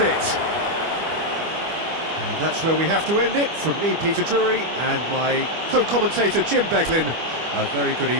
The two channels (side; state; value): left; late; 25 ms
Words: And that's where we have to end it. From me, Peter Drury, and my co-commentator, Jim Beglin. A very good